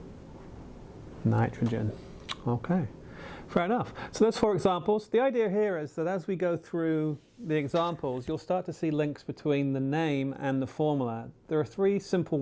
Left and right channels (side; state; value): both; identical; correlation 1.00